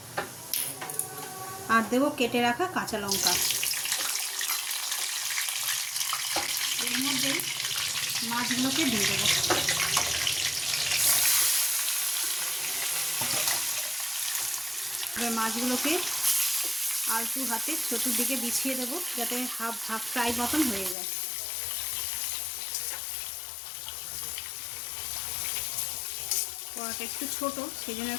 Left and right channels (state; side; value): drops out; right; at 21.0 s